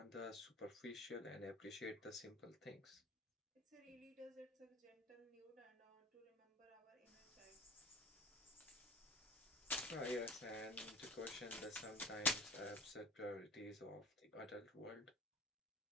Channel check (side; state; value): both; normal; correlation 0.36